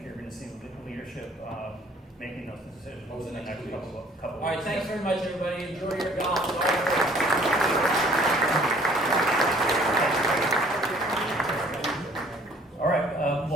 you're going to see the leadership making those decisions over the next couple of All right, weeks. thanks very much, everybody. Enjoy your golf. All right.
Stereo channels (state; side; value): normal; both; correlation 0.56